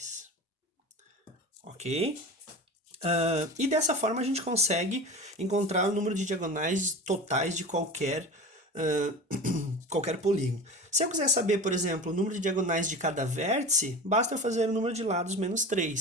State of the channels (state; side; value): normal; both; correlation 0.32